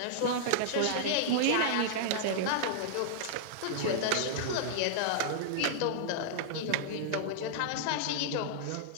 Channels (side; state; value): both; different; correlation -0.01